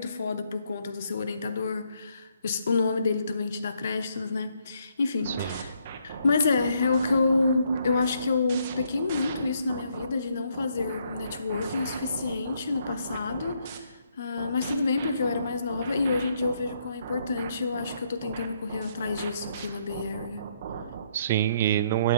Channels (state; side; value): inverted; both; correlation -0.72